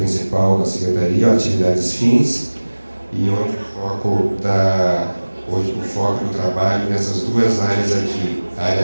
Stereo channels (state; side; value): inverted; both; correlation -1.00